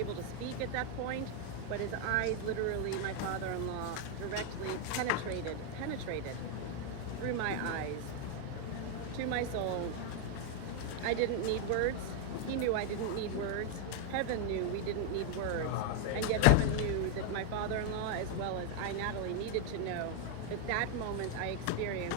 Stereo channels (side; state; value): both; different; correlation 0.01